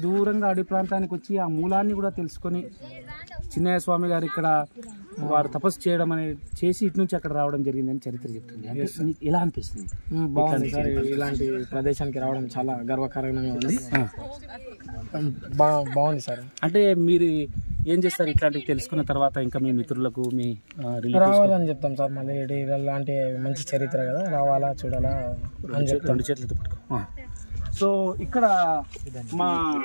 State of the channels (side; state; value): both; inverted; correlation -1.00